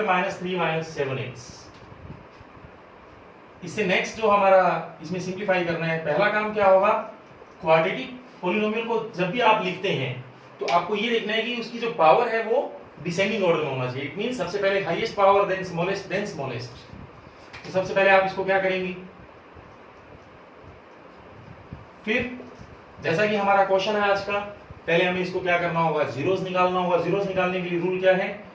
minus 3 minus 7x। इससे नेक्स्ट जो हमारा इसमें सिंप्लीफाई करना है, पहला काम क्या होगा, क्वाड्रेटिक पॉलिनोमियल को जब भी आप लिखते हैं तो आपको ये देखना है कि उसकी जो पावर है वो डिसेंडिंग ऑर्डर में होना चाहिए। इट मींस सबसे पहले हाईएस्ट पावर देन स्मॉलेस्ट। तो सबसे पहले आप इसको क्या करेंगे, फिर जैसा कि हमारा क्वेश्चन है आज का, पहले हमें इसको क्या करना होगा, जीरोस निकालना होगा। जीरोस निकालने के लिए रूल क्या है,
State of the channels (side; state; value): both; identical; correlation 1.00